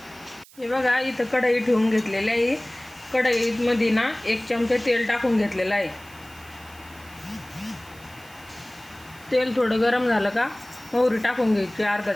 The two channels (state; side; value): noise; right; hiss, 24 dB below the sound